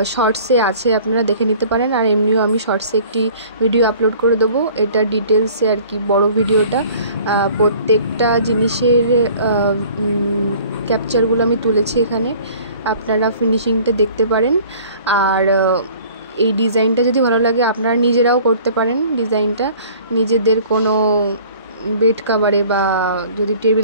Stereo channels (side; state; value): both; inverted; correlation -0.50